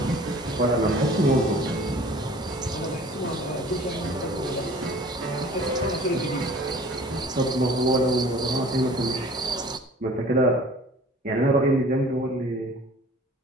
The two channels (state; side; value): normal; both; correlation 0.47